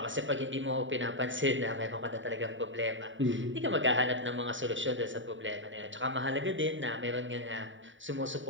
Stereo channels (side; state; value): left; late; 0.55 ms